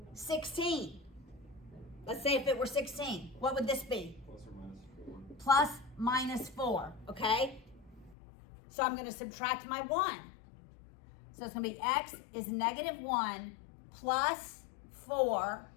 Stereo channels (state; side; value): drops out; right; at 8.2 s